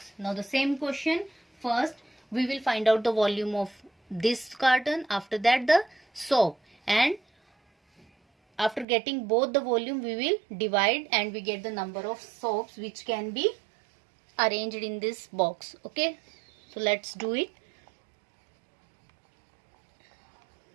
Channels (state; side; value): drops out; left; at 8.8 s